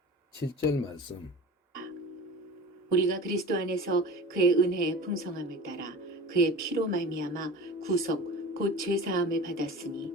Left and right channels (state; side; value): normal; both; correlation 0.36